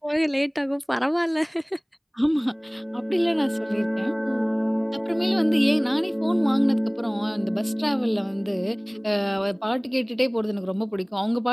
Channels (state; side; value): identical; both; correlation 1.00